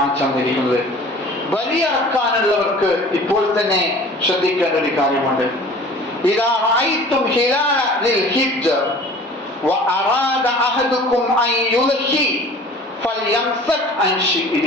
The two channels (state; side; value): normal; both; correlation 0.45